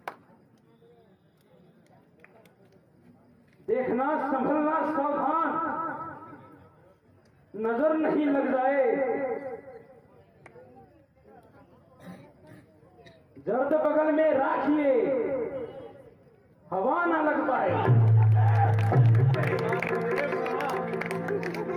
देखना, संभलना, सावधान, नजर नहीं लग जाए। जर्द बगल में राखिए, हवा ना लग पाए।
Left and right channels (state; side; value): identical; both; correlation 1.00